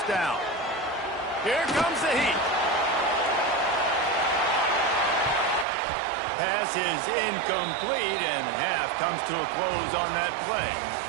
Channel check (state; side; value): drops out; left; at 5.7 s